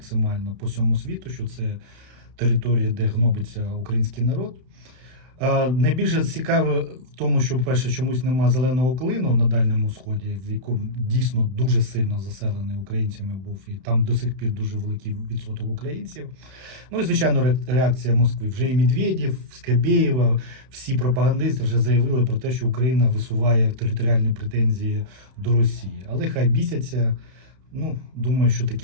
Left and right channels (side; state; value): left; late; 32 ms